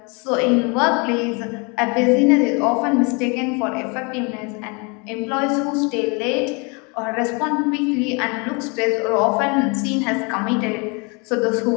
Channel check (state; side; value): quieter; right; 31.6 dB